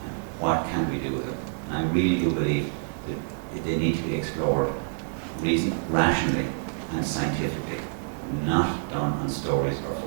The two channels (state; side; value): silent; left; 59 dB below the other